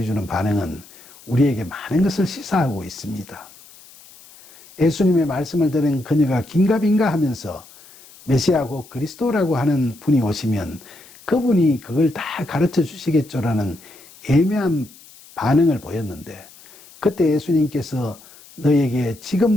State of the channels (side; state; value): left; noise; hiss, 23 dB below the sound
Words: 반응은 우리에게 많은 것을 시사하고 있습니다. 예수님의 말씀을 들은 그녀가 긴가민가 하면서 메시아 곧 그리스도라고 하는 분이 오시면 그분이 그걸 다 가르쳐 주시겠죠라는 애매한 반응을 보였는데 그때 예수님께서 너에게 지금